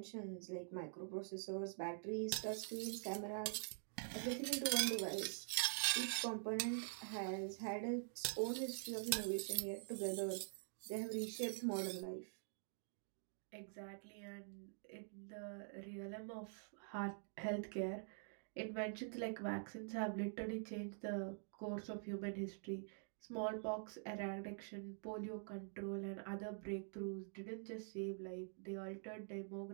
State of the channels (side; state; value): left; silent; digital silence